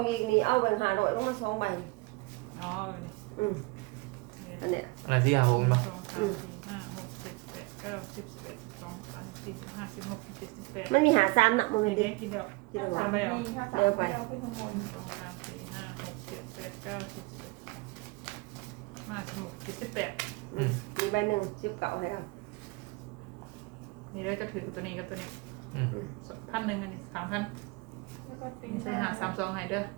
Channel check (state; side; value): quieter; left; 25.9 dB